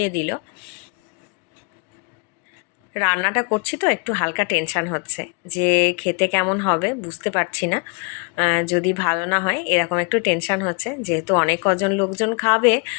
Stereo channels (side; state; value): right; quieter; 33.7 dB